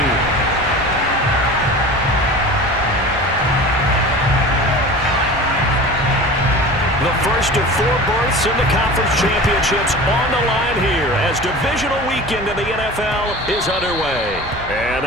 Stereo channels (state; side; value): normal; both; correlation 0.36